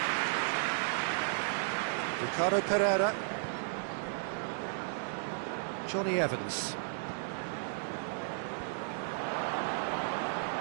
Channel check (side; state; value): left; silent; digital silence